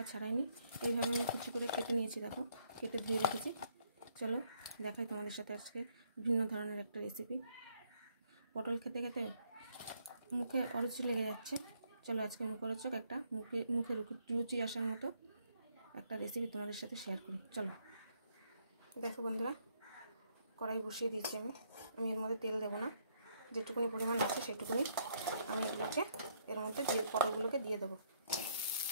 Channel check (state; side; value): inverted; both; correlation -0.70